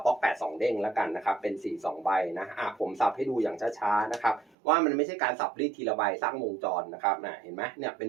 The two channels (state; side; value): drops out; left; at 4.5 s